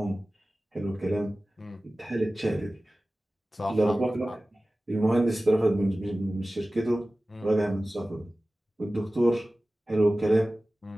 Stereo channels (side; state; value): both; normal; correlation 0.97